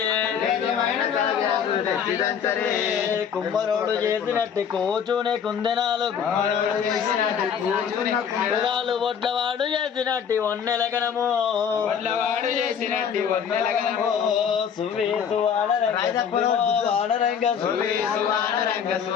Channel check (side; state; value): right; quieter; 7.6 dB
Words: తేజమైన కాకిరకులు తెచ్చి దంచరే కుమ్మరోడు చేసినట్టు కూచునే కుందెనాలు కుమ్మరోడు చేసినట్టు కూచునే కుందెనాలు వడ్లవాడు చేసినట్టు ఒన్నెలగనము వడ్లవాడు చేసినట్టు ఒన్నెలగనము సువి సువానరంగ వానరంగ సువి సువానరంగ